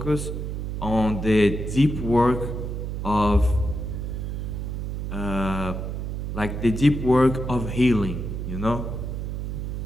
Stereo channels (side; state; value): right; noise; hum, 4 dB below the sound